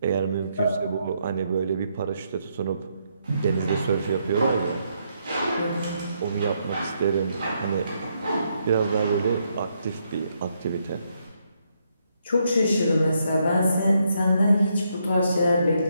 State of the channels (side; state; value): both; inverted; correlation -0.76